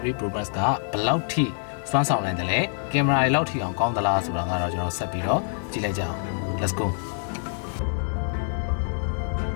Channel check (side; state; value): right; silent; 61 dB below the other